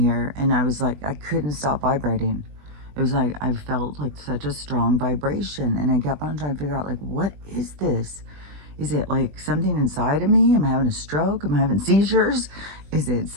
and I was like, I couldn't stop vibrating. It was like I felt like such a strong vibration, and I kept on trying to figure out like, what is this? Is it like something inside of me? Am I having a stroke? Am I having seizures? Is it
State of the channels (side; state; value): left; late; 20 ms